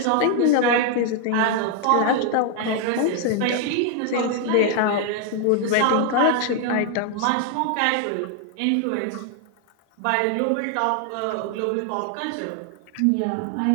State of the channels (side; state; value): both; different; correlation 0.00